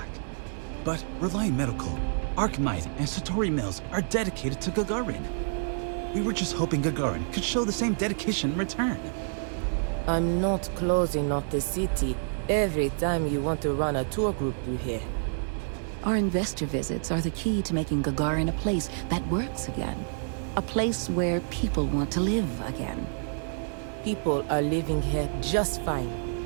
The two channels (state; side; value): silent; left; digital silence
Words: But Reliant Medical, Archmite, and Satori Mills are dedicated to Gagarin. We were just hoping Gagarin could show the same dedication in return. I'm not closing off the city every time you want to run a tour group through here. Our investor visits are the key to making Gagarin a place that works again. A place where people want to live again. People are living here just fine.